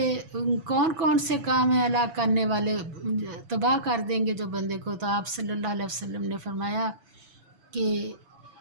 کون کون سے کام ہیں ہلاک کرنے والے، تباہ کر دیں گے جو بندے کو؟ تو آپ صلی اللہ علیہ وسلم نے فرمایا کہ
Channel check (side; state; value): left; late; 7.0 ms